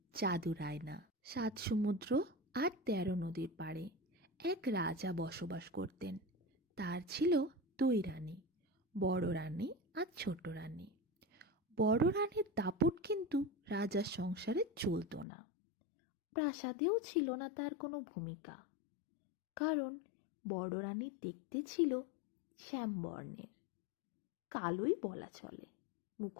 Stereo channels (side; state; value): right; drops out; at 15.2 s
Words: জাদুর আয়না। 7 সমুদ্র আর 13 নদীর পাড়ে এক রাজা বসবাস করতেন। তার ছিল 2 রানী, বড় রানী আর ছোট রানী। বড় রানীর দাপট কিন্তু রাজার সংসারে চলতো না। প্রাসাদেও ছিল না তার কোনো ভূমিকা, কারণ বড় রানী দেখতে ছিল শ্যামবর্ণের, কালোই বলা চলে।